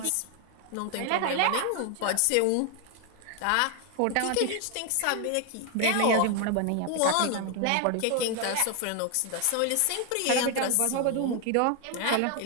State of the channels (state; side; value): different; both; correlation 0.01